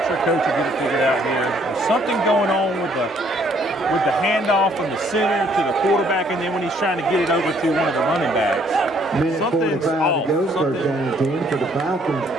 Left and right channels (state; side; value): normal; both; correlation 0.65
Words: Coach will get it figured out here. There's something going on with the handoff from the center to the quarterback, and then when he's trying to get it over to one of the running backs. Minute 45 to go, first down and 10 for the Falcons.